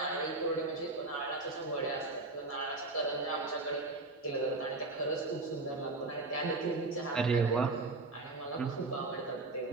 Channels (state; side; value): quieter; left; 3.3 dB